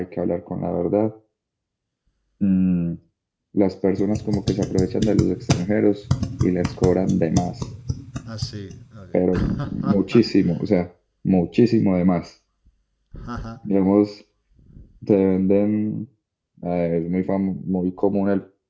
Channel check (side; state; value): both; identical; correlation 1.00